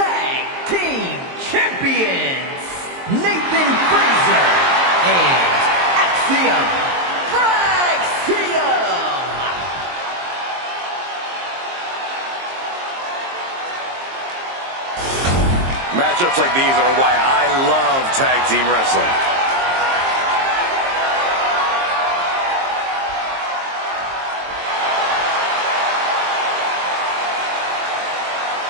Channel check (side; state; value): left; late; 22 ms